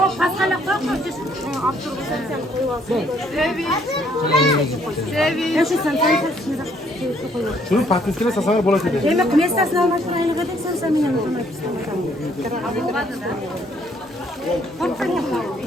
koyma. Sen koyuyorsun. Ya şu sen koyuyorsun. Şunu patatesine sasana bola dedi. Demek ki mestasını almak için aynı kadar sen benim yanıma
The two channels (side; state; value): both; normal; correlation 0.66